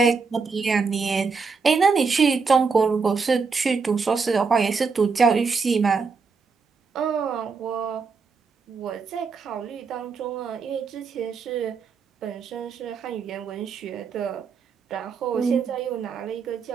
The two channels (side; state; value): left; quieter; 5.0 dB